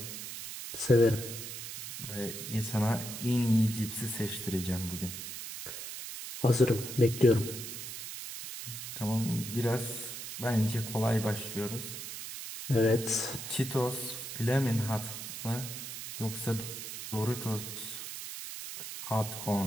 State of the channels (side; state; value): right; noise; hiss, 8 dB below the sound